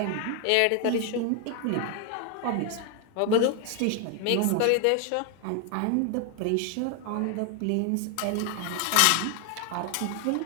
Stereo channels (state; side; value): different; both; correlation 0.01